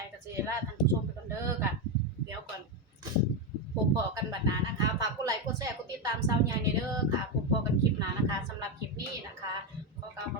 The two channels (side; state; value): both; normal; correlation 0.09